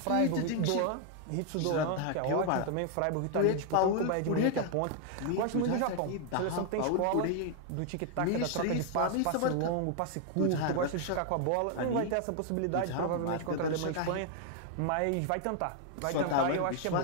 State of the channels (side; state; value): both; different; correlation 0.00